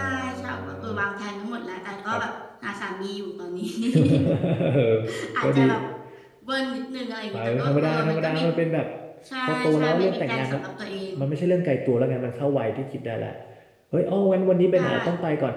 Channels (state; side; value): identical; both; correlation 1.00